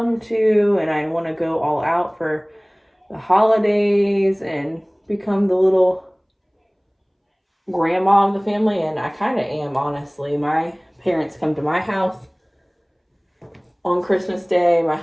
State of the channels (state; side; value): identical; both; correlation 1.00